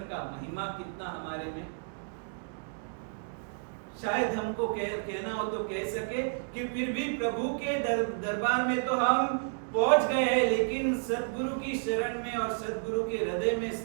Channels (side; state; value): left; silent; digital silence